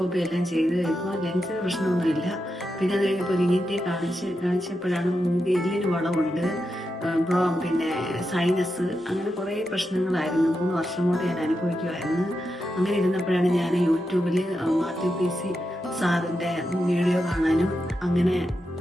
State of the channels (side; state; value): both; normal; correlation 0.87